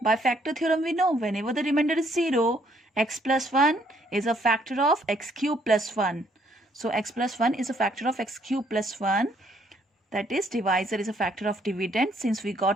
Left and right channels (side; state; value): both; normal; correlation 0.67